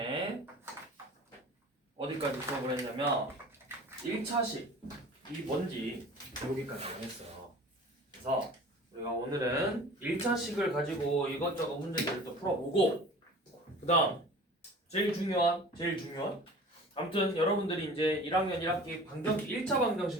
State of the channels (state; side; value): normal; both; correlation 0.42